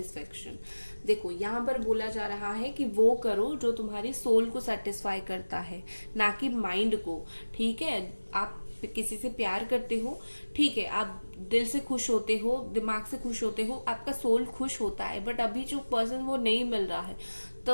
देखो यहाँ पर बोला जा रहा है कि वो करो जो तुम्हारी सोल को सेटिस्फाई करता है, ना कि माइंड को, ठीक है। आप किसी से प्यार करते हो, ठीक है, आप दिल से खुश होते हो, दिमाग से खुश होते हो, आपका सोल खुश होता है, बट अभी जो पर्सन वो नहीं मिल रहा है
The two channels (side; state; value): both; inverted; correlation -1.00